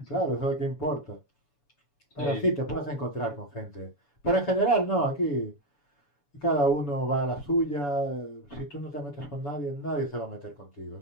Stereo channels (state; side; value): late; right; 7.0 ms